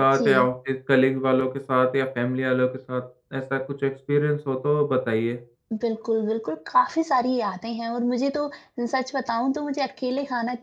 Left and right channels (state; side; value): identical; both; correlation 1.00